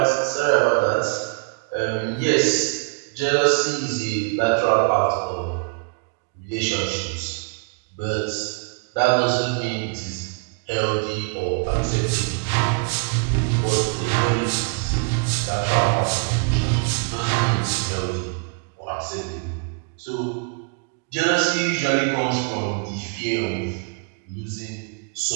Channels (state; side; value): quieter; left; 35.4 dB